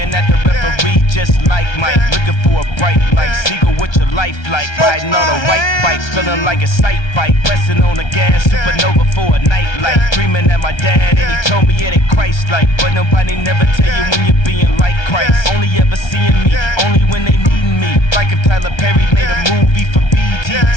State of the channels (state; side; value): late; right; 1.3 ms